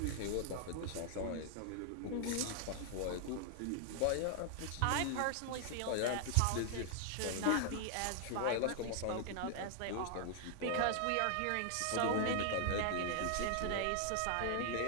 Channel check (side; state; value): both; different; correlation 0.00